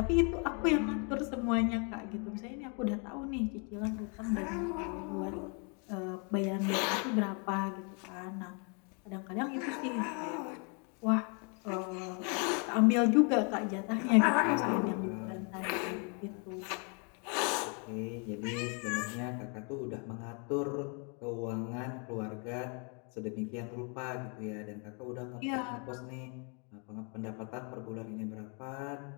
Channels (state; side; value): quieter; right; 37.0 dB